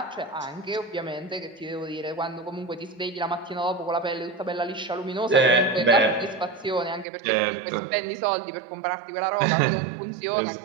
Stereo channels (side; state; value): left; drops out; at 7.1 s